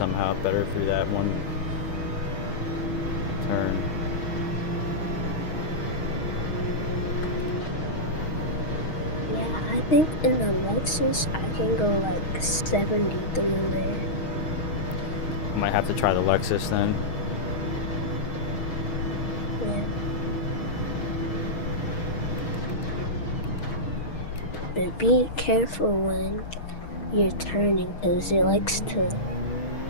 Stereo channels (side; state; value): right; late; 6.3 ms